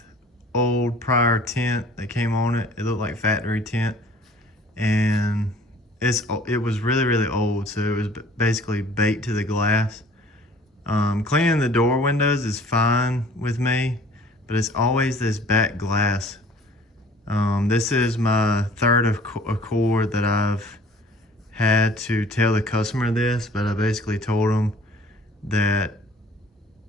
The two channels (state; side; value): normal; both; correlation 0.51